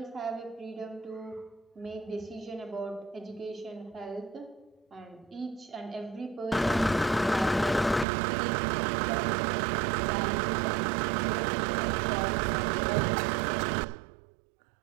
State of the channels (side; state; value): left; drops out; at 8.1 s